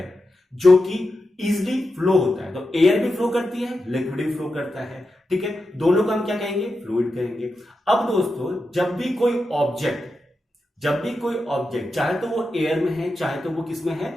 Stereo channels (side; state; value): both; normal; correlation 0.89